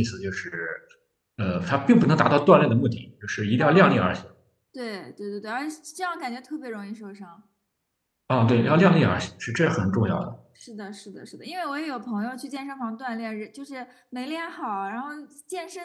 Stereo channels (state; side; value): identical; both; correlation 1.00